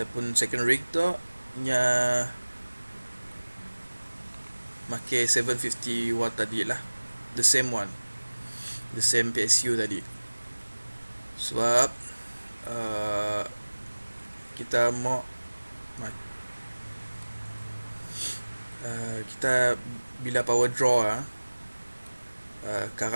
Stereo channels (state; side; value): inverted; both; correlation -1.00